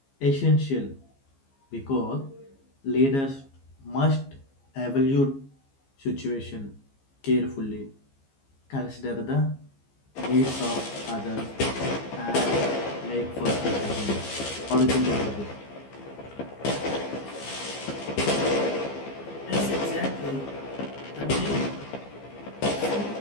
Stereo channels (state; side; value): late; right; 15 ms